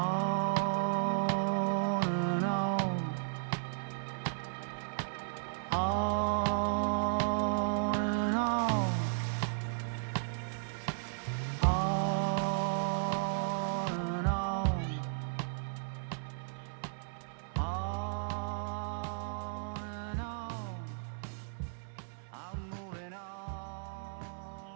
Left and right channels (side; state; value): left; silent; 55 dB below the other